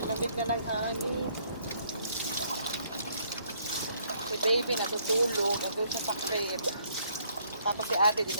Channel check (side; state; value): both; inverted; correlation -0.67